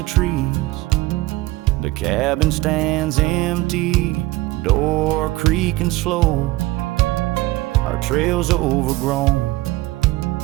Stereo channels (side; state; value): left; quieter; 18.8 dB